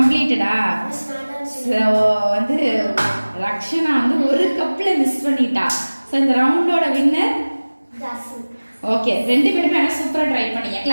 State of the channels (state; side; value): inverted; both; correlation -1.00